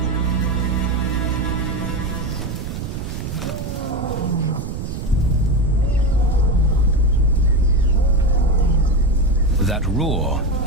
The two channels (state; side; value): noise; right; rumble, 6 dB below the sound